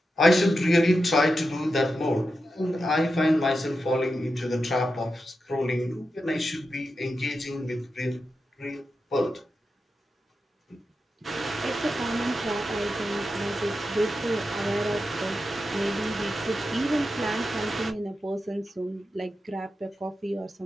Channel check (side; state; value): both; normal; correlation 0.89